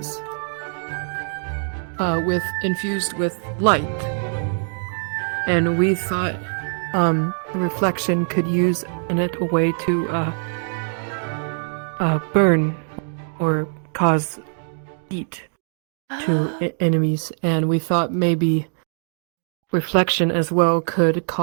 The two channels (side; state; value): left; silent; 64 dB below the other